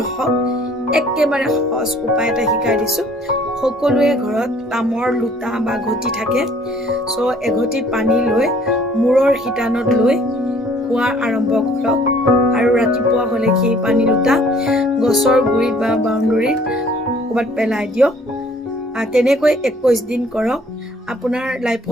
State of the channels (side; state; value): both; normal; correlation 0.57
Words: হওক একেবাৰে সহজ উপায় এটা শিকাই দিছো সকলোৱে ঘৰত তামৰ লুটা বা ঘটি থাকে সো এঘটি পানী লৈ মূৰৰ হিতানত লৈ খোৱা আৰম্ভ কৰক আৰু ৰাতিপুৱা হ'লে সেই পানী লুটা গছৰ গুৰিত বা বাউণ্ডৰীত ক'ৰবাত পেলাই দিয়ক তেনেকৈ 21 দিন কৰক আপোনাৰ